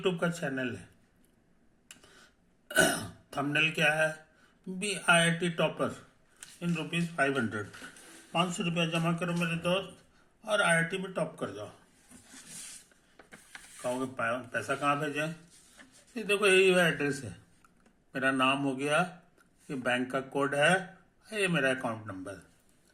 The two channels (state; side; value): identical; both; correlation 1.00